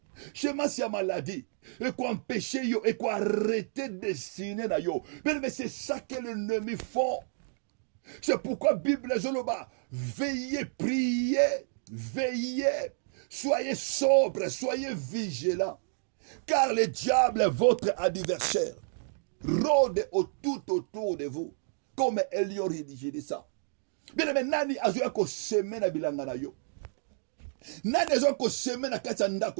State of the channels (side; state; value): left; silent; digital silence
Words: semence ya maladie et quoi empêcher yo et quoi arrêter destiné na yo mais c'est ça que l'ennemi font. C'est pourquoi Bible zoloba veillez, priez, veillez, soyez sobres, soyez vigilants car le diable est votre adversaire rôde tout autour de vous comme Elion rédigé de ça. Bien aimé, nani azoya ko seme na bilanga na yo, nani azoya ko seme na kati ya